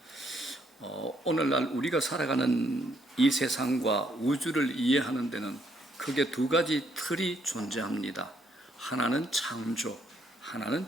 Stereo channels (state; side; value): normal; both; correlation 0.72